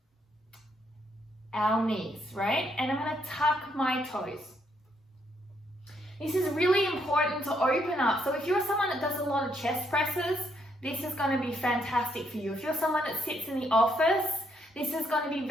our knees, right? And I'm going to tuck my toes. This is really important to open up. So if you're someone that does a lot of chest presses, this is going to be fantastic for you. If you're someone that sits in the office, this is going to be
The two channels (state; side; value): normal; both; correlation 0.74